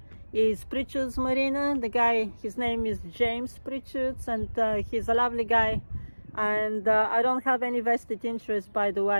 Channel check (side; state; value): both; inverted; correlation -1.00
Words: is Pritchard's Marina. The guy, his name is James Pritchards, and he's a lovely guy. And I don't have any vested interest, by the